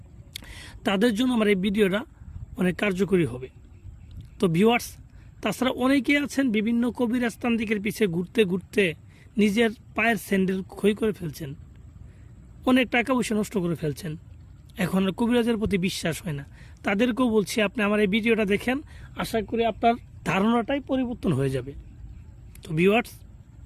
তাদের জন্য আমার এই ভিডিওটা অনেক কার্যকরী হবে। তো ভিউয়ার্স, তাছাড়া অনেকেই আছেন বিভিন্ন কবিরাজ তান্ত্রিকের পিছে ঘুরতে ঘুরতে নিজের পায়ের স্যান্ডেল ক্ষয় করে ফেলছেন, অনেক টাকা পয়সা নষ্ট করে ফেলছেন, এখন আর কবিরাজের প্রতি বিশ্বাস হয় না। তাদেরকেও বলছি, আপনি আমার এই ভিডিওটা দেখেন, আশা করি আপনার ধারণাটাই পরিবর্তন হয়ে যাবে। তো ভিউয়ার্স,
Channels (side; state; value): both; identical; correlation 1.00